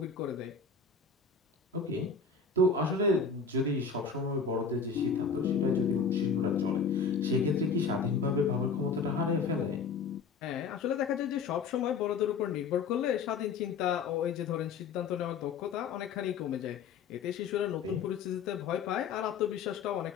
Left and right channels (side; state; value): right; quieter; 5.3 dB